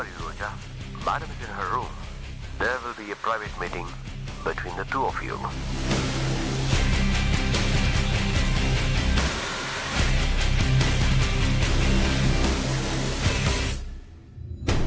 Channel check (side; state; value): both; identical; correlation 1.00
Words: are you, Roja? Madam is in her room. There will be a private meeting between the two of you.